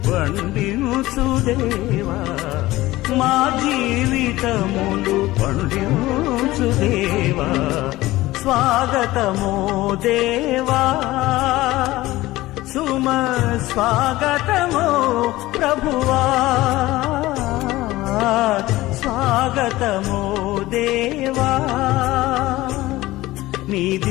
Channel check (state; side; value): quieter; right; 17.7 dB